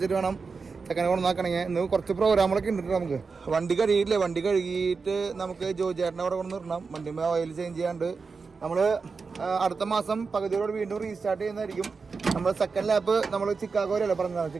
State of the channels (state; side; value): quieter; left; 4.8 dB